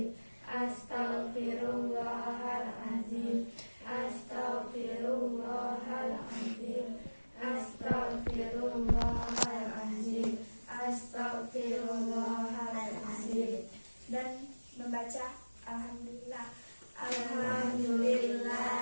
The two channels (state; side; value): inverted; both; correlation -1.00